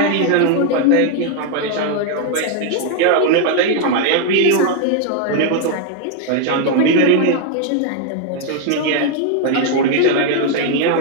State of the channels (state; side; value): different; both; correlation 0.01